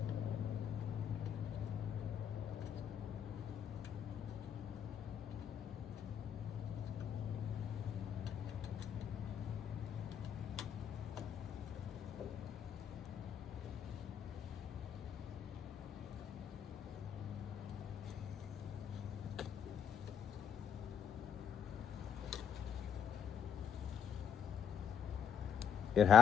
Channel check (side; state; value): right; quieter; 8.1 dB